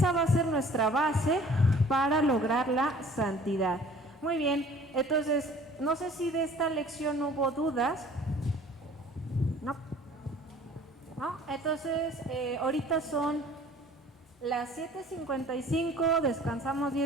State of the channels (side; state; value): both; normal; correlation 0.50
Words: va a ser nuestra base para lograr la santidad. Muy bien, entonces, no sé si de esta lección hubo dudas. ¿No? Entonces, ahorita son las 7:55, descansamos